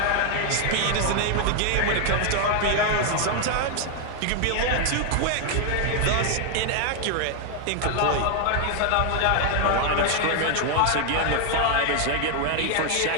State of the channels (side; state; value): both; different; correlation 0.00